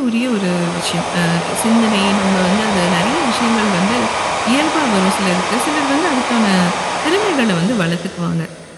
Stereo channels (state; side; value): identical; both; correlation 1.00